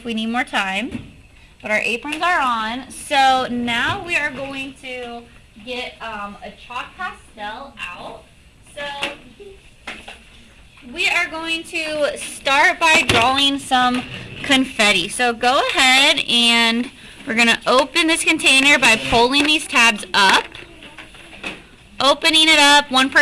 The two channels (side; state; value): both; identical; correlation 1.00